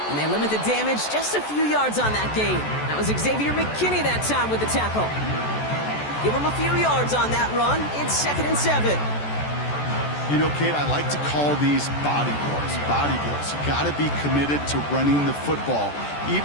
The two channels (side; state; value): right; late; 14 ms